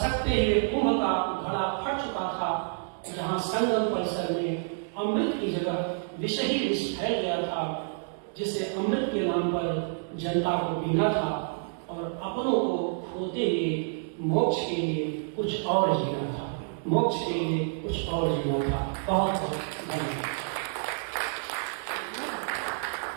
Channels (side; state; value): left; silent; digital silence